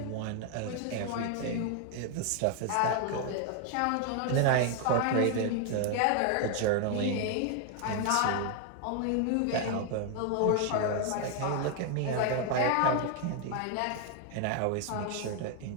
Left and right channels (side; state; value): both; different; correlation 0.00